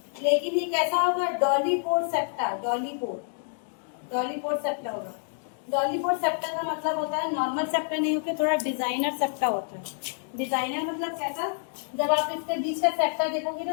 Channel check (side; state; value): right; silent; digital silence